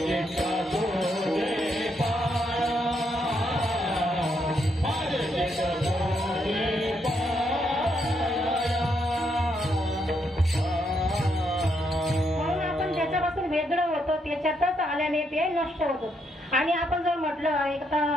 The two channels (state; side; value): normal; both; correlation 0.77